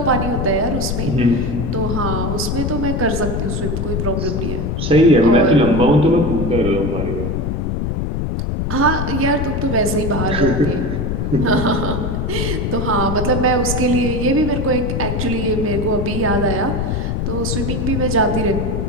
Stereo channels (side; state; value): left; noise; rumble, 1 dB below the sound